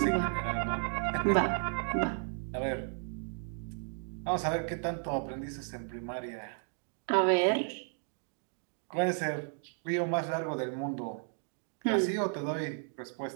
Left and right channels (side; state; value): left; silent; 55 dB below the other